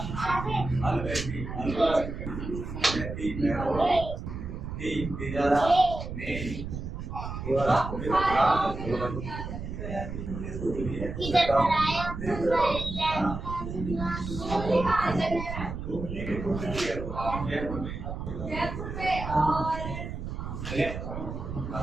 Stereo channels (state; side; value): noise; right; rumble, 7 dB below the sound